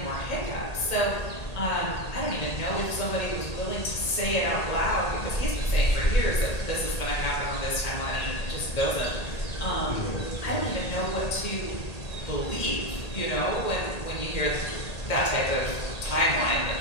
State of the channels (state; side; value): late; right; 1.8 ms